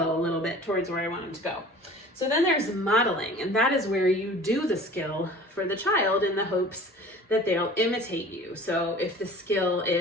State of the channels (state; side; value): normal; both; correlation 0.43